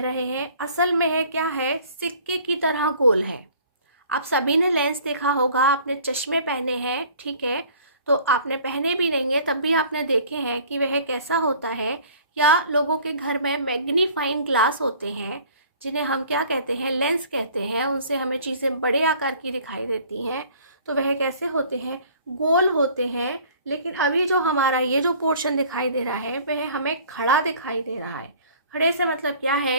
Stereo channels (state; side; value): inverted; both; correlation -0.51